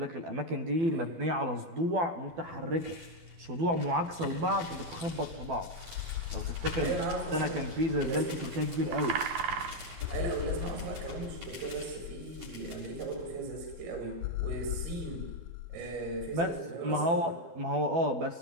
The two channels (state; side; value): late; left; 12 ms